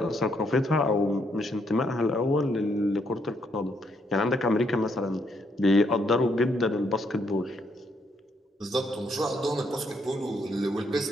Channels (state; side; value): normal; both; correlation 0.74